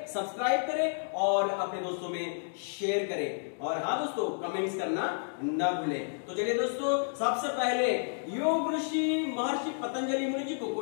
सब्सक्राइब करें और अपने दोस्तों में शेयर करें। और हाँ दोस्तों, कमेंट्स करना न भूलें। तो चलिए दोस्तों, सबसे पहले योग ऋषि महर्षि पतंजलि मुनि जी को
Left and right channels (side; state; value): right; silent; digital silence